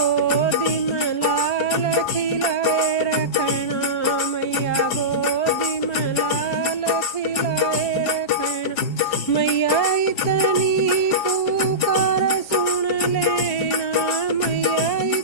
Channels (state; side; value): late; right; 5.0 ms